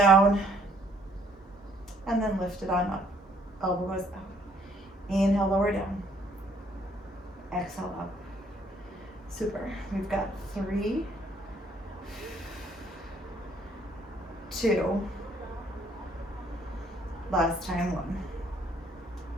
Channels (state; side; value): normal; both; correlation 0.64